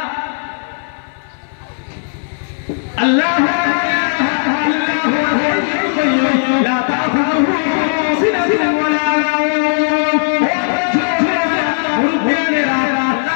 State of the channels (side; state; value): right; silent; 59 dB below the other